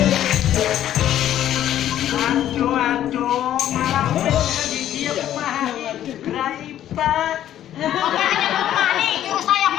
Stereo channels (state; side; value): quieter; right; 11.6 dB